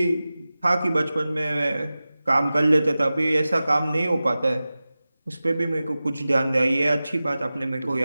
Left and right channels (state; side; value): inverted; both; correlation -0.96